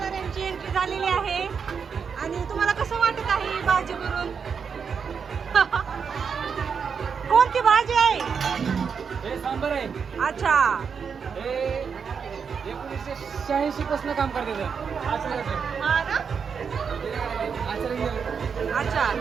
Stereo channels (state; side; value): quieter; left; 6.3 dB